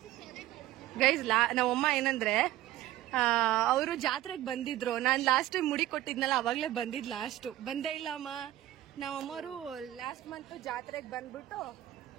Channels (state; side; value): quieter; left; 14.6 dB